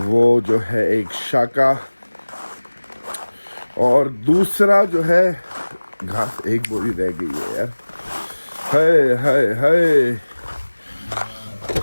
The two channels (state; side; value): inverted; both; correlation -1.00